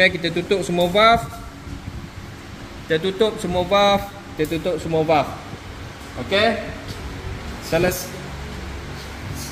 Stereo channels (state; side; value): identical; both; correlation 1.00